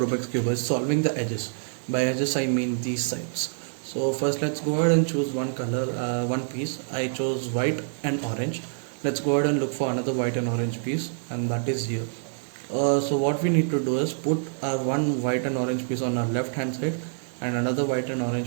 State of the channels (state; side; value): silent; left; 61 dB below the other